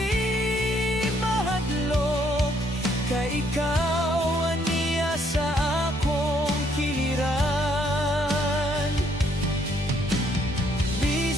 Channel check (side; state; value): both; normal; correlation 0.68